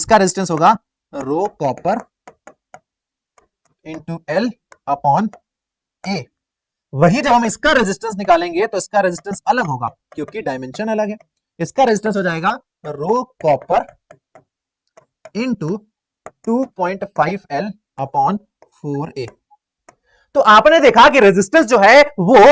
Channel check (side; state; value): both; identical; correlation 1.00